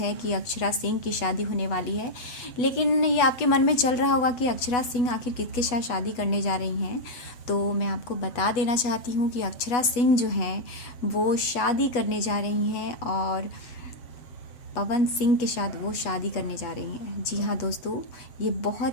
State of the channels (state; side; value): late; right; 8.2 ms